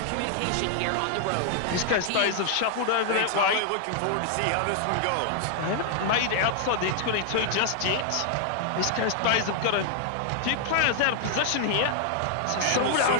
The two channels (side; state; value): both; different; correlation 0.00